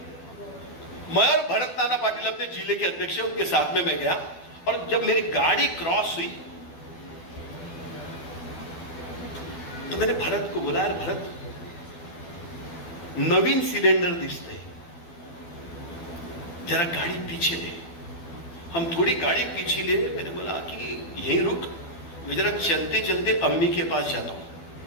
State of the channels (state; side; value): late; right; 12 ms